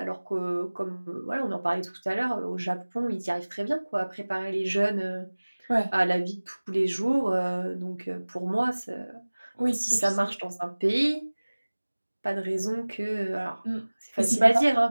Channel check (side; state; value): both; inverted; correlation -1.00